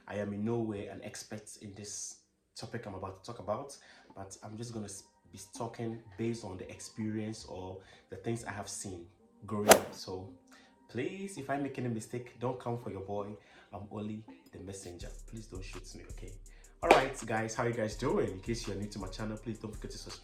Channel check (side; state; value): both; identical; correlation 1.00